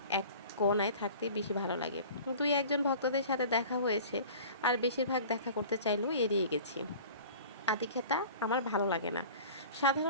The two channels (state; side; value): inverted; both; correlation -0.42